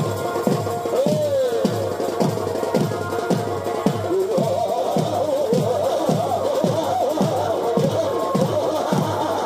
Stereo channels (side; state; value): both; identical; correlation 1.00